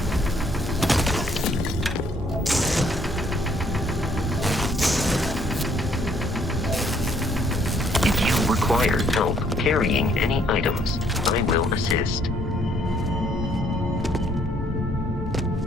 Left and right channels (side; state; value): both; normal; correlation 0.66